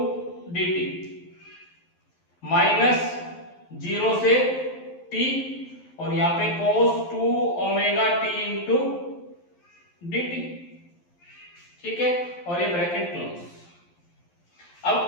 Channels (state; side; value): late; right; 12 ms